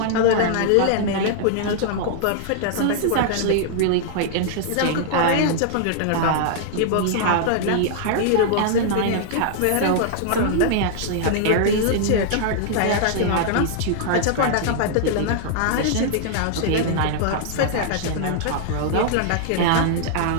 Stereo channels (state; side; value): different; both; correlation -0.01